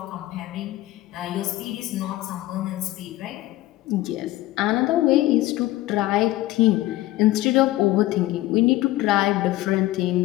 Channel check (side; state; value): right; quieter; 16.7 dB